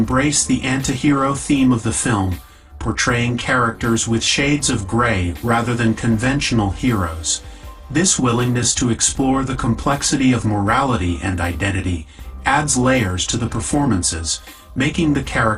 the anti-hero theme of the film, portraying characters with shades of gray rather than conventional heroes. This willingness to explore the complexity of morality and identity adds layers to the performances, making the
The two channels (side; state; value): both; identical; correlation 1.00